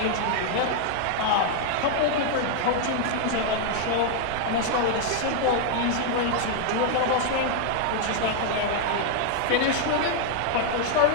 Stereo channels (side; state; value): both; different; correlation 0.00